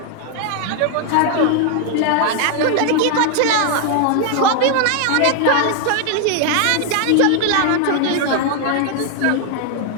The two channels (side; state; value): both; different; correlation 0.00